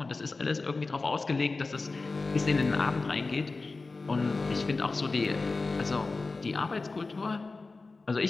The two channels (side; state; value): right; quieter; 3.7 dB